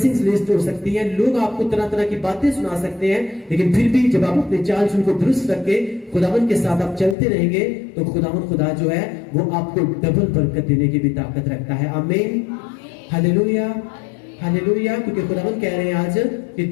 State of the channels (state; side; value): drops out; right; at 7.2 s